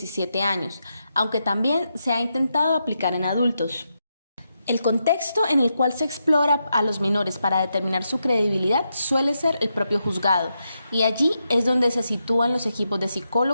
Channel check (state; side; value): inverted; both; correlation -0.85